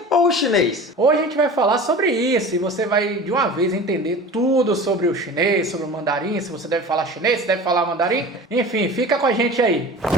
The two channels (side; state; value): both; normal; correlation 0.37